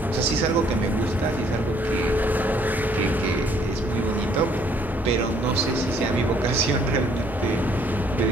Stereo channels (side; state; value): both; normal; correlation 0.64